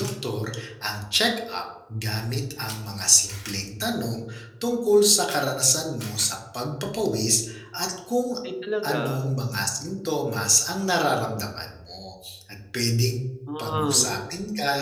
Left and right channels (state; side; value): identical; both; correlation 1.00